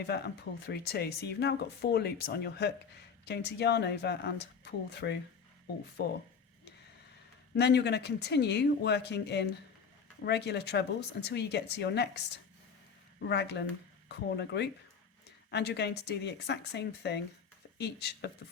and pull through 2. So you've now got 4 loops on your hook. You're going to yarn over and pull through all 4. And then you're going to continue working in regular trebles until you get to your next raglan corner group, and you're going to do the exact same thing for each of the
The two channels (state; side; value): quieter; right; 6.1 dB